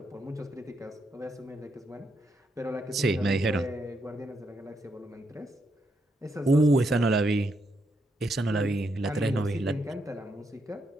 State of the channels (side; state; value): both; normal; correlation 0.79